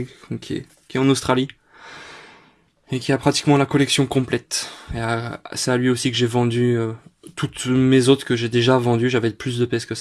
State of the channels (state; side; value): identical; both; correlation 1.00